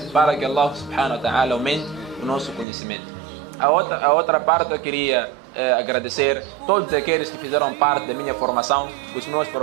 para que Allah subhanahu wa ta'ala aumente o nosso conhecimento. A outra parte eu queria agradecer todos aqueles que fizeram parte da minha formação, os meus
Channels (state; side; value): drops out; left; at 2.7 s